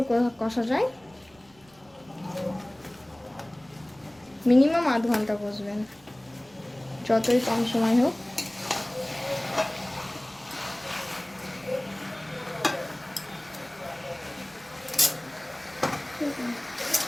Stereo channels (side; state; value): right; noise; rumble, 30 dB below the sound